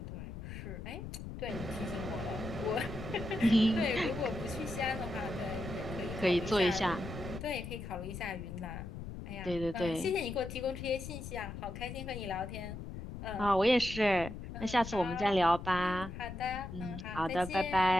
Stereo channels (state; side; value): noise; left; rumble, 9 dB below the sound